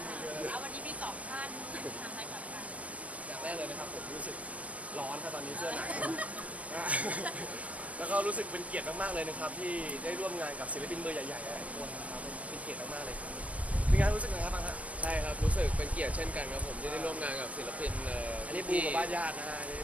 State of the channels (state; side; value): late; left; 0.067 ms